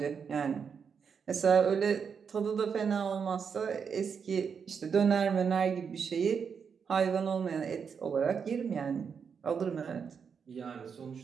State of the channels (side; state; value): left; quieter; 6.5 dB